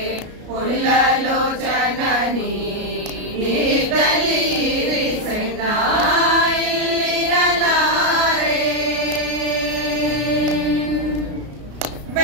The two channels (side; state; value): left; late; 33 ms